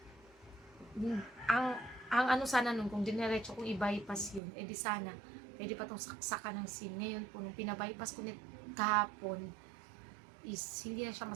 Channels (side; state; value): left; drops out; at 4.4 s